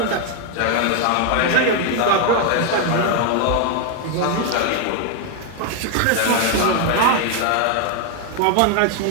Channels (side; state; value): both; different; correlation 0.01